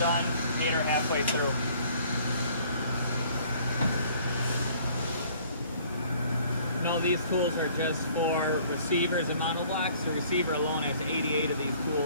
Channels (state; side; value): inverted; both; correlation -0.56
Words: 8 are halfway through. No, these tools are just for receivers and monoblocks. The receiver alone has 88 of these